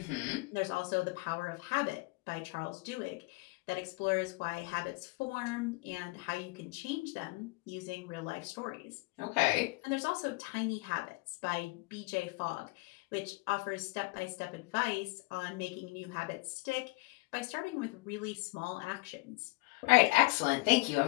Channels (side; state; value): right; quieter; 25.2 dB